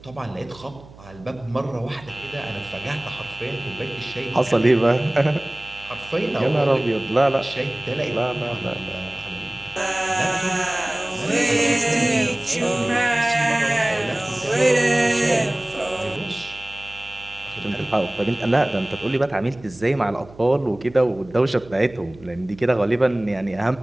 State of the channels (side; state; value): right; noise; hum, 21 dB below the sound